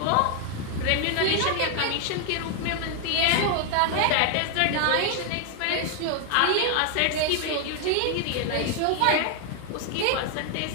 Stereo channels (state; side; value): different; both; correlation 0.00